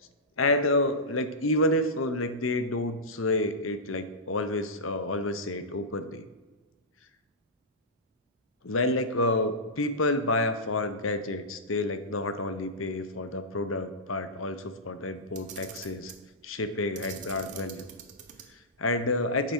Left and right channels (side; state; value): both; normal; correlation -0.15